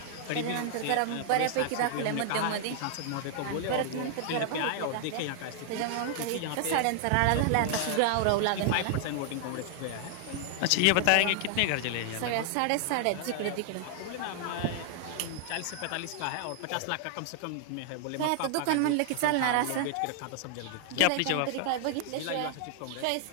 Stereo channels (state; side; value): different; both; correlation 0.00